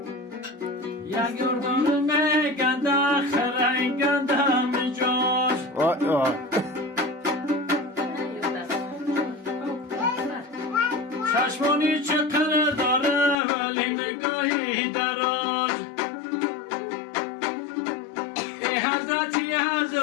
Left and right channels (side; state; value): right; drops out; at 13.4 s